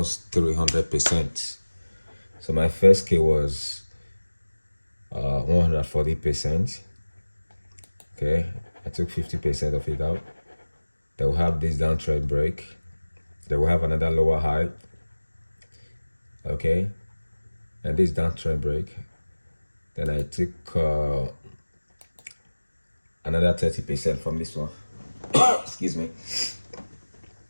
300%. So my first K was 140%. Okay, I took 50% of it out. They will have this downtrend break. They will have another lower high. Okay, and this downtrend break. Then I took another 30% from this one. Excuse me.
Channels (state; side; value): inverted; both; correlation -1.00